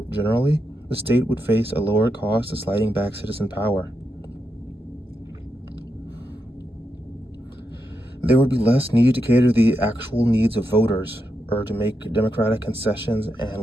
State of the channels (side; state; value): both; normal; correlation 0.84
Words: generally, the state would face a lower cost of sliding back citizen power. There would be less need to cater to the actual needs of voters or to make democratic concessions